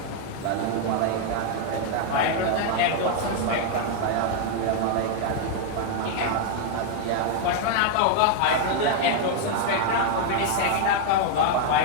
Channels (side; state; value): both; different; correlation 0.00